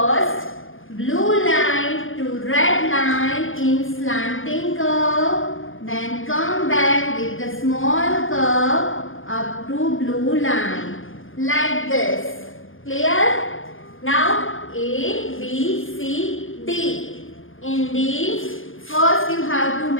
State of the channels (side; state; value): right; late; 0.58 ms